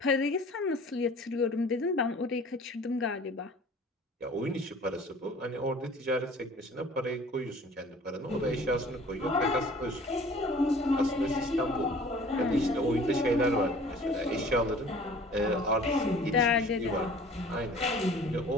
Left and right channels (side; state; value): both; normal; correlation 0.48